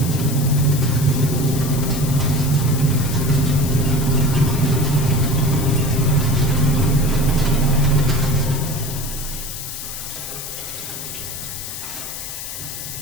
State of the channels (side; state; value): left; noise; hiss, 8 dB below the sound